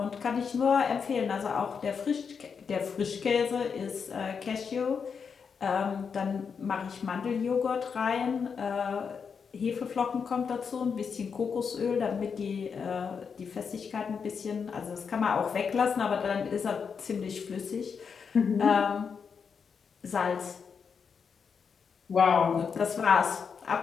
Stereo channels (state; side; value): quieter; right; 6.1 dB